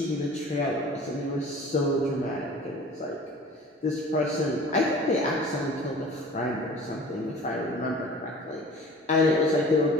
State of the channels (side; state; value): both; normal; correlation 0.44